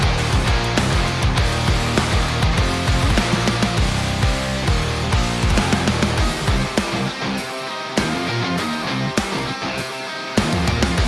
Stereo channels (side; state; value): both; identical; correlation 1.00